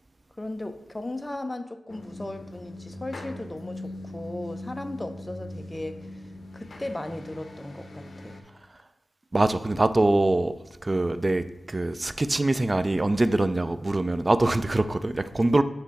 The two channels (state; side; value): normal; both; correlation 0.98